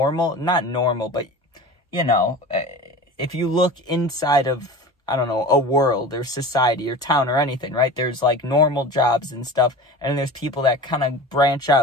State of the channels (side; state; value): both; normal; correlation 0.35